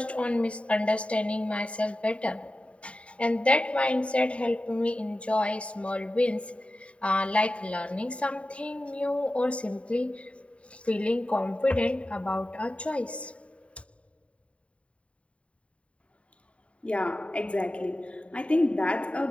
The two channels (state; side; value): late; right; 0.062 ms